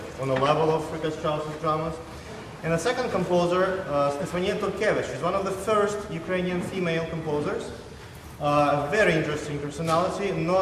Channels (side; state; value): both; identical; correlation 1.00